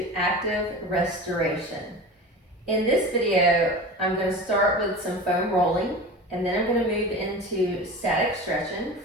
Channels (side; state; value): both; normal; correlation 0.32